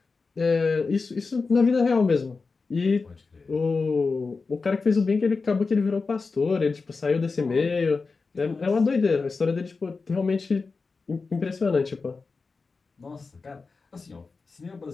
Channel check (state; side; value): quieter; right; 4.3 dB